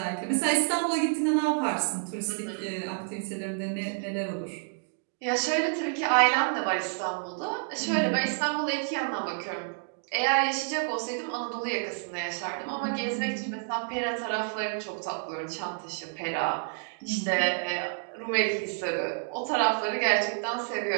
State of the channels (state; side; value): silent; left; 58 dB below the other